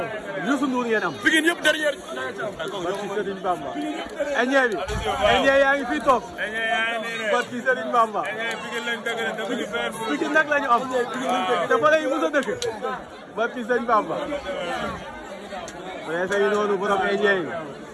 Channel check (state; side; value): identical; both; correlation 1.00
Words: Youssou Ndour ngeen am. Pikine yëpp derrière. barki Serigne Bamba. Ndiaye bi. Ndiaye yaa ngi fii toog. barki Serigne Bamba. Pikine nag la ñu am. te fa la ñu mos a dëkk. barki Serigne Bamba. mais say noonu borom Ndiaye.